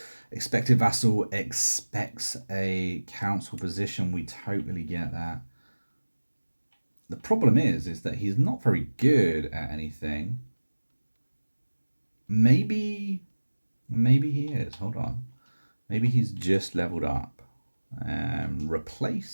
Expected vassal expects a council position. We totally get that. The problem is that he's not very good at anything. Maybe he is. Hold on. Maybe he's just leveled up.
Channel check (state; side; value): inverted; both; correlation -1.00